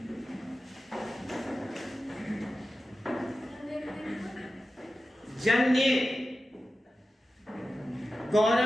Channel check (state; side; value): normal; both; correlation 0.94